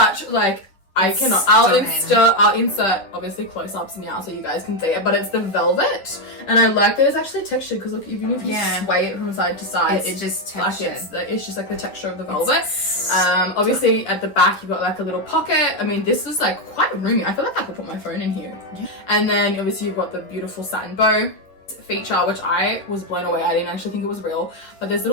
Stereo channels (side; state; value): right; late; 10 ms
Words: like, I cannot. I'll insert obviously close-ups now so you guys can see it, but it's the velvet, and I like that it's actually textured, because look, even if you sway it from side to side, it's just textured. Like it's just like the texture of the velvet. Obviously at the back you've got like a little pocket. I mean, this is like quite roomy. I feel like I could put my phone in here. And then obviously you've got the beautiful satin bow feature, which I was blown away. I didn't actually think it was real, but there's